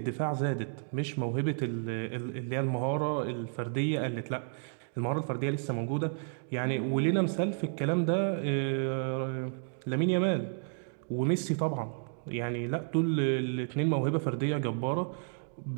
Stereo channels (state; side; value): silent; left; 57 dB below the other